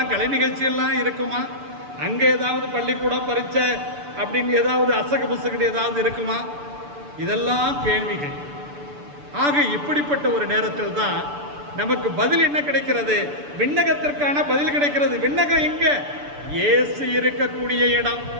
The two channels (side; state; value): left; late; 6.9 ms